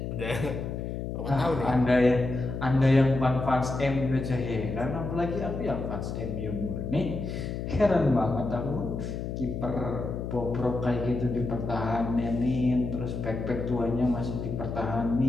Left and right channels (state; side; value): noise; left; hum, 5 dB below the sound